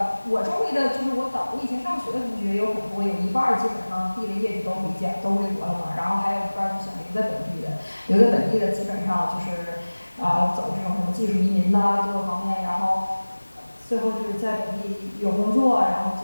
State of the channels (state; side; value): inverted; both; correlation -1.00